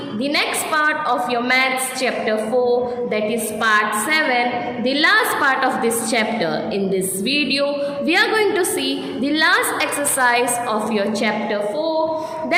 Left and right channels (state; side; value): identical; both; correlation 1.00